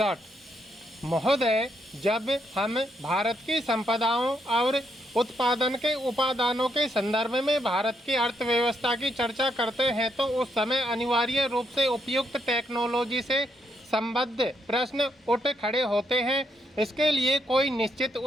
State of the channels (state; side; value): normal; both; correlation 0.77